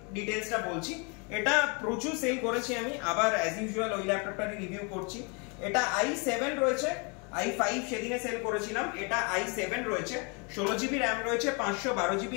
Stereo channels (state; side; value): quieter; right; 33.2 dB